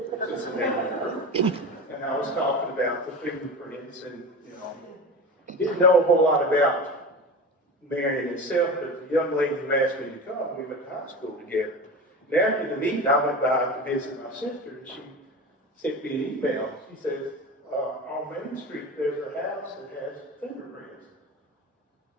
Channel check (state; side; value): normal; both; correlation 0.29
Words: it's a neighborhood group. And I was talking about the fingerprints and, you know, didn't know a whole lot about Marion itself, but the young lady who asked me to come, we went to high school together. And after the meeting, I went by to visit my sister, and she sent me an email. She says, on Main Street, there's a house that has fingerprints.